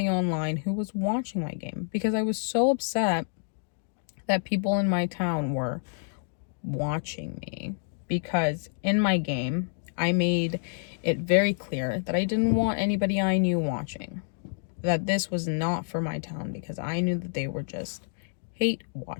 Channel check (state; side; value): silent; right; digital silence